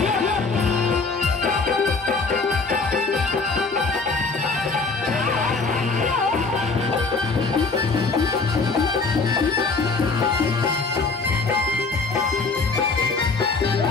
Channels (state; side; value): quieter; right; 4.1 dB